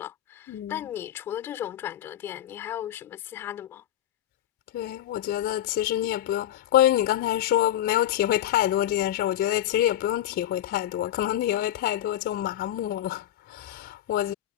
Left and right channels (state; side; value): quieter; right; 12.3 dB